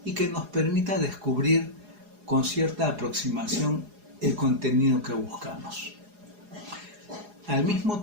y que nos permita descubrir con cierta aproximación el contenido que buscamos. Al mismo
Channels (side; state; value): left; late; 4.8 ms